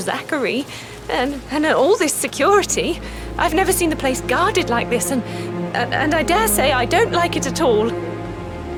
and all this security. I've never seen the place guarded like this, and I dare say I don't like it at all.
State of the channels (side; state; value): both; identical; correlation 1.00